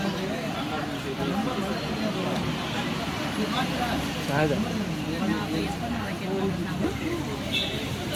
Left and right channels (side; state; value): both; identical; correlation 1.00